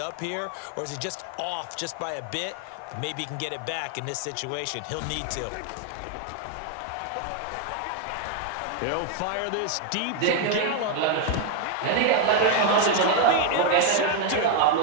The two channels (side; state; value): both; different; correlation 0.00